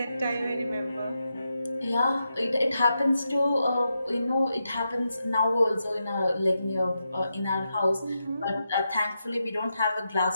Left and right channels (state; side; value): inverted; both; correlation -0.86